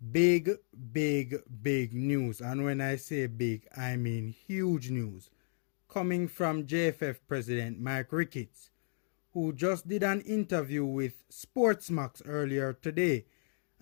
Big, big news. And when I say big, I mean huge news. Coming from JFF President Mike Ricketts, who just did an interview with Sportsmax earlier today.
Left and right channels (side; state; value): right; silent; digital silence